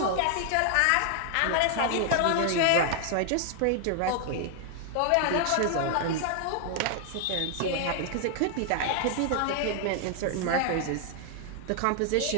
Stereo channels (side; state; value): both; different; correlation 0.00